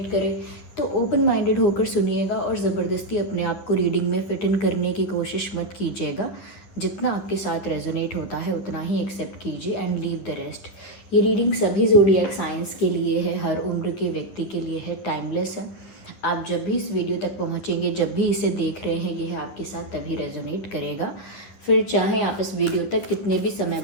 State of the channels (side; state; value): right; late; 11 ms